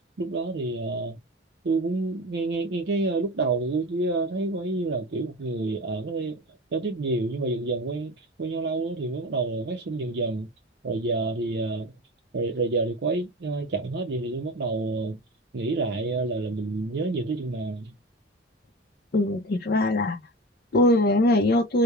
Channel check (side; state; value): both; normal; correlation 0.30